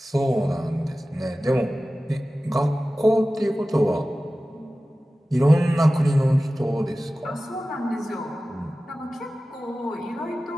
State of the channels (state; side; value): normal; both; correlation 0.96